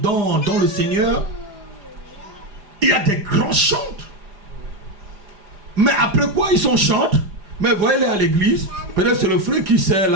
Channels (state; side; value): late; left; 4.9 ms